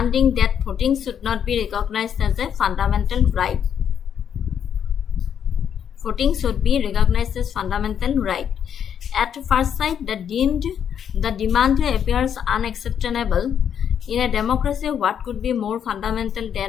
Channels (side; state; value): right; quieter; 8.5 dB